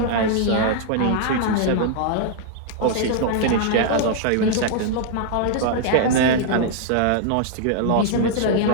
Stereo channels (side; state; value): both; different; correlation -0.01